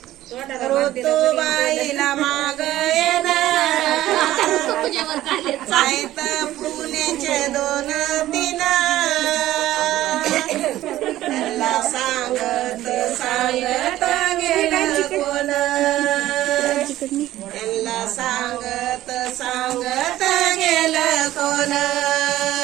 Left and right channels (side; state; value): left; quieter; 14.6 dB